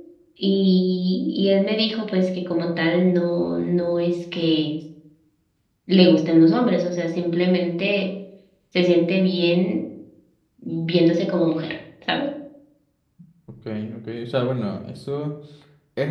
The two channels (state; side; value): identical; both; correlation 1.00